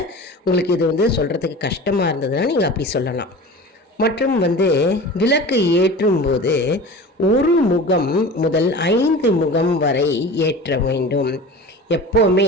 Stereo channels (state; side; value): normal; both; correlation 0.36